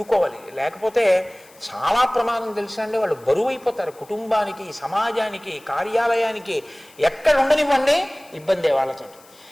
లేకపోతే చాలా ప్రమాదం తెలుసా అండి. వాళ్ళు బరువు అయిపోతారు కుటుంబానికి, సమాజానికి, కార్యాలయానికి. ఎక్కడ ఉండనివ్వండి ఇబ్బందే వాళ్ళతో.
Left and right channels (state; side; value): noise; left; hiss, 26 dB below the sound